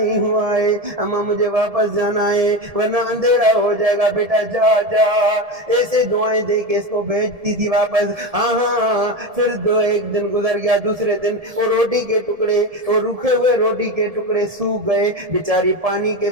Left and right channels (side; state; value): left; late; 1.7 ms